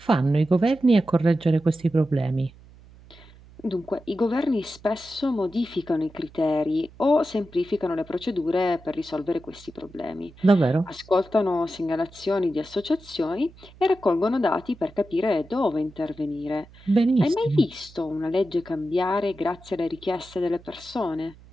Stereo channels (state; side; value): noise; right; hum, 23 dB below the sound